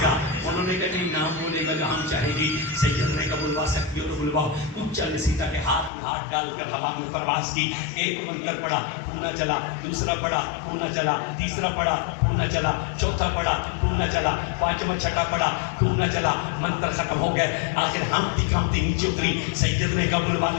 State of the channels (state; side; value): drops out; right; at 5.9 s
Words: گا. انہوں نے کہا نہیں نام بولے گا جو ہم چاہیں گی. سید نے کہا بلوا سکتی ہو تو بلواؤ. اونچا نے سیتا کے ہاتھ میں ہاتھ ڈال کر ہوا میں پرواز کی. ایک منتر پڑا، کھوہ نہ چلا. دوسرا پڑا، کھوہ نہ چلا. تیسرا پڑا، کھوہ نہ چلا. چوتھا پڑا، کھوہ نہ چلا. پانچواں چھٹا پڑا، کھوہ نہ چلا. منتر ختم ہو گئے. آخر ہانپتی کانپتی نیچے اتری. سید نے کہا بلوا